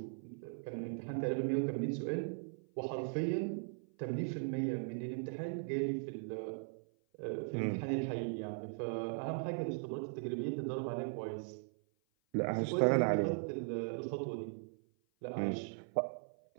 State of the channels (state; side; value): silent; left; 52 dB below the other